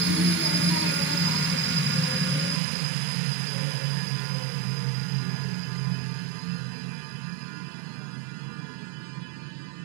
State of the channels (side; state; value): left; drops out; at 2.6 s